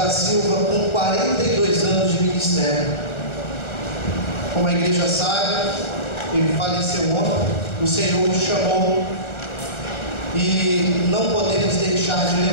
Silva, com 42 anos de ministério. Como a igreja sabe, ele faleceu ontem, o Senhor o chamou e não podemos deixar de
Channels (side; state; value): right; late; 1.3 ms